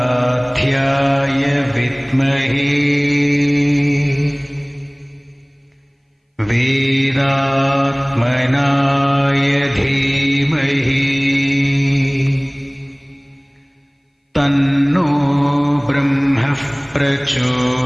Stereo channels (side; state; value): both; identical; correlation 1.00